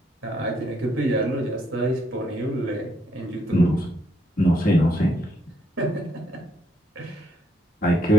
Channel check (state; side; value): normal; both; correlation 0.73